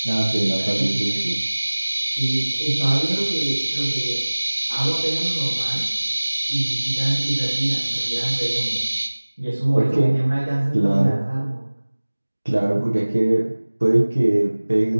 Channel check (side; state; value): both; inverted; correlation -1.00